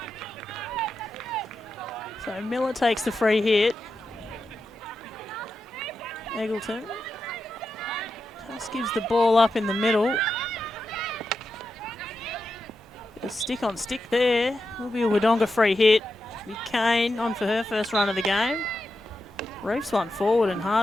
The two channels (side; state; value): both; normal; correlation 0.88